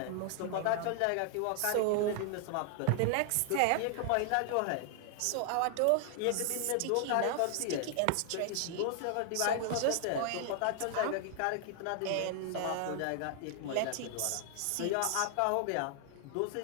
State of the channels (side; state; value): both; different; correlation 0.00